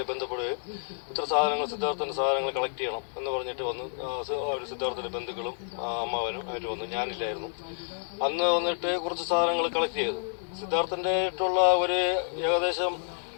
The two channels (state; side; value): silent; right; digital silence